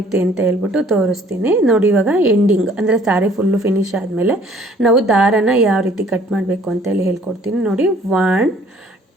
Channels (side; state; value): both; normal; correlation 0.57